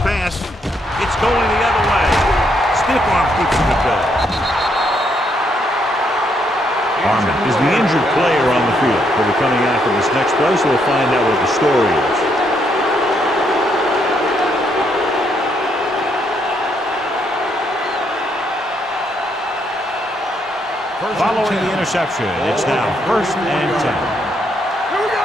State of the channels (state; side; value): normal; both; correlation 0.75